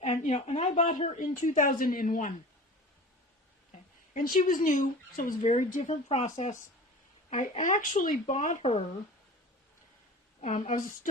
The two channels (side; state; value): both; normal; correlation 0.38